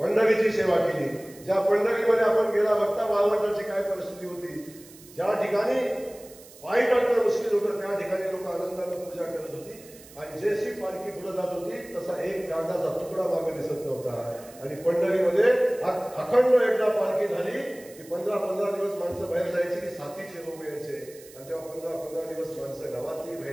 सेवा केली. ज्या पंढरीमध्ये आपण गेला बघता वाळवंटाची काय परिस्थिती होती, ज्या ठिकाणी पायी टाकणं मुश्किल होतं, त्या ठिकाणी लोक आनंदाने पूजा करत होती. आणि जशी पालखी पुढे जात होती तसा एक कागदाचा तुकडा मागे दिसत नव्हता. आणि पंढरीमध्ये अखंड एकदा पालखी झाली की 15-15 दिवस माणसं बाहेर जायची, की साथीचे रोग यायचे, आणि तेव्हा 15-15 दिवस माणसं गावातली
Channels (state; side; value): noise; right; hiss, 21 dB below the sound